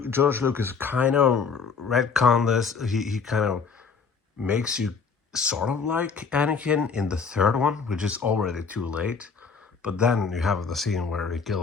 George Lucas kind of retconned this. He kind of makes you sort of like Anakin in the third one, which is already too late. But then you have the scene where he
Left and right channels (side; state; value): right; quieter; 5.4 dB